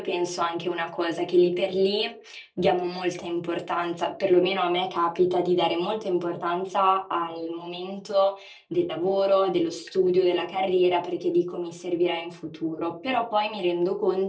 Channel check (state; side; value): identical; both; correlation 1.00